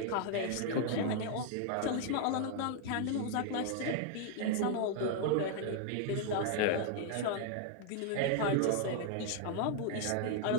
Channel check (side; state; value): both; different; correlation 0.00